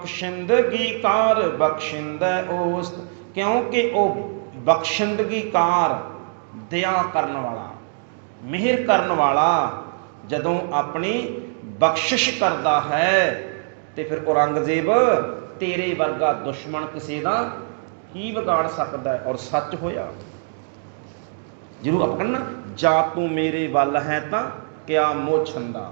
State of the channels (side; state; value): left; silent; digital silence